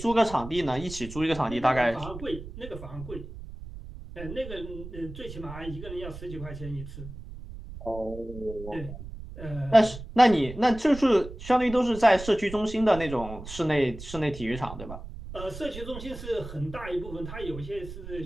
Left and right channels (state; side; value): noise; right; rumble, 12 dB below the sound